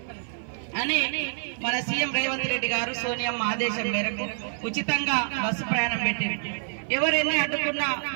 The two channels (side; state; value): left; silent; 55 dB below the other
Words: అని మన సీఎం రేవంత్ రెడ్డి గారు సోనియమ్మ ఆదేశం మేరకు ఉచితంగా బస్సు ప్రయాణం పెట్టింది. ఎవరెన్ని అడ్డుకున్నా